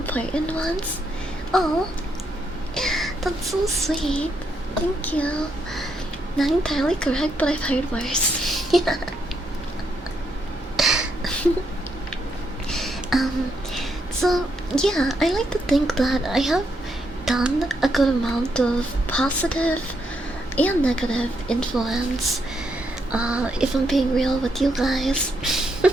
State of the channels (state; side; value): normal; both; correlation 0.78